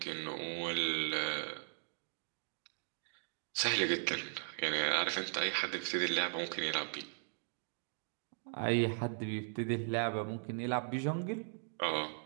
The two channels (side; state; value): left; silent; digital silence